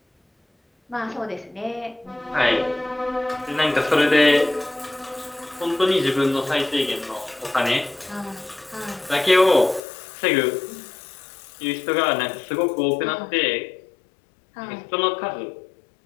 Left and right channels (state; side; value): drops out; right; at 9.8 s